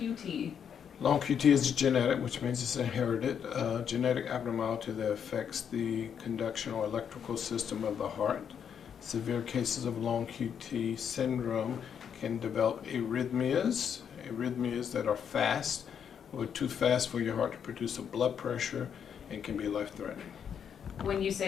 Long QT is genetic, which means it's inherited genetic abnormality that affects the conduction or electrical system of the heart. Severe cases of long QT syndrome can develop arrhythmias that are fast or too fast for your heart to produce a blood pressure and can be life-threatening. When you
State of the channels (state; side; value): quieter; right; 7.9 dB